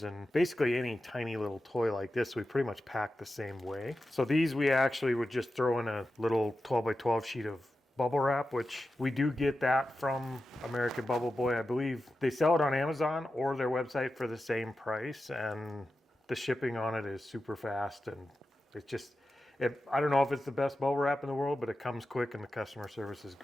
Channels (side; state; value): both; normal; correlation 0.92